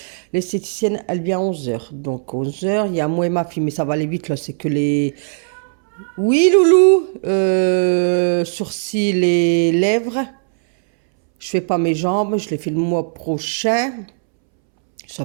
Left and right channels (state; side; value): silent; left; 67 dB below the other